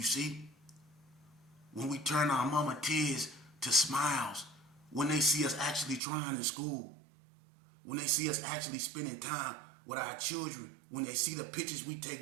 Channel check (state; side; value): drops out; left; at 6.0 s